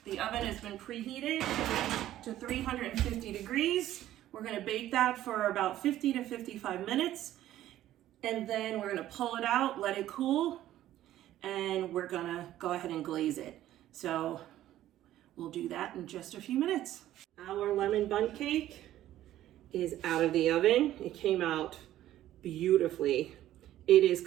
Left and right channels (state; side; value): quieter; left; 13.3 dB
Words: the oven has been preheated to 350 degrees. We're gonna bake that for about 50 to 55 minutes, and then we're gonna pull it out, let it cool, and we're gonna go ahead and glaze it. So we'll do that in just a few minutes. Our lemon bundt cake is out of the oven. It came out beautifully. It is